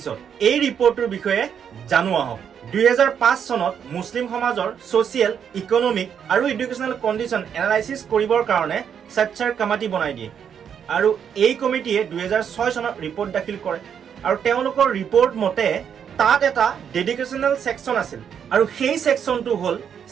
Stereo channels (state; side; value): quieter; left; 8.0 dB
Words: এই ৰিপৰ্টটোৰ বিষয়ে জানো আহক। 2005 চনত মুছলিম সমাজৰ ছ'চিয়েল, ইকনমিক আৰু এডুকেশ্যনেল কণ্ডিশ্যন এনালাইচিছ কৰিবৰ কাৰণে সচ্চাৰ কমিটি বনাই দিয়ে আৰু এই কমিটিয়ে 2006 চনত ৰিপৰ্ট দাখিল কৰে আৰু তেওঁলোকৰ ৰিপৰ্ট মতে তাত এটা ডেডিকেশ্যনেল ছেকশ্যন আছিল আৰু সেই ছেকশ্যনটো হ'ল